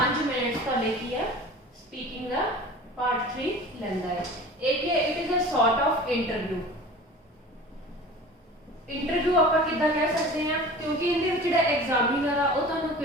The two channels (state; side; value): normal; both; correlation 0.40